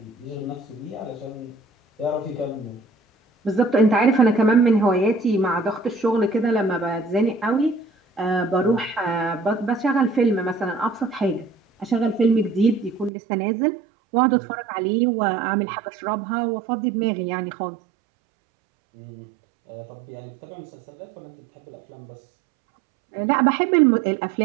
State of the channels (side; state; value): left; drops out; at 13.1 s